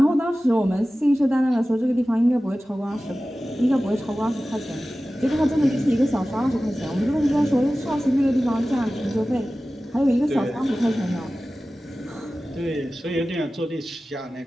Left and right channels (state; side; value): normal; both; correlation 0.96